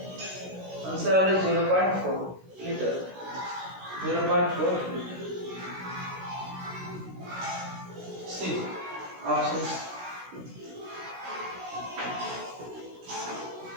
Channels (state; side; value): late; left; 16 ms